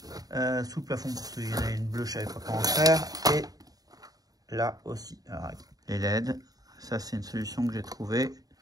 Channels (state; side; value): late; left; 0.18 ms